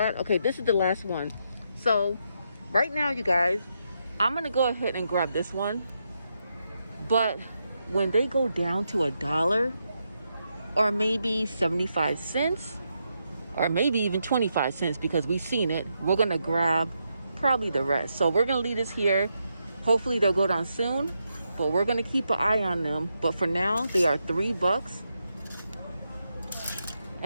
Okay, this is the last one. So right now, you guys, I'm gonna go ahead and grab this one. But when they go down to $1 or maybe 75 cents or maybe even 25 cents because we've seen it, we're gonna grab probably the rest. So we're gonna leave this here. Hopefully they'll go down soon, but we're gonna keep an eye on them. But for now, they are $3.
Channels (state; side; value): inverted; both; correlation -0.82